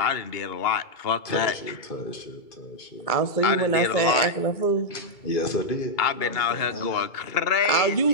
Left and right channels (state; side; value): late; right; 2.3 ms